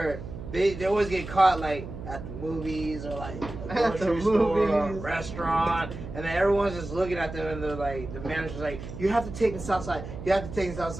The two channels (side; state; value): right; noise; hum, 10 dB below the sound